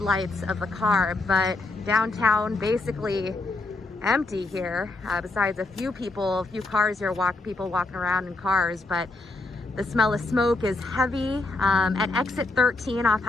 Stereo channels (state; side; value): quieter; right; 3.1 dB